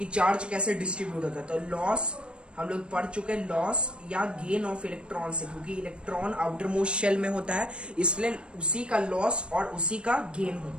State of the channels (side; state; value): left; late; 0.056 ms